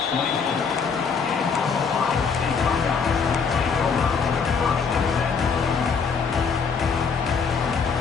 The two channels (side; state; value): right; quieter; 5.7 dB